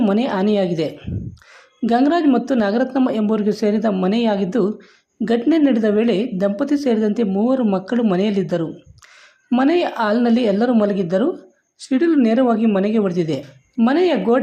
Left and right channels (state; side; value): identical; both; correlation 1.00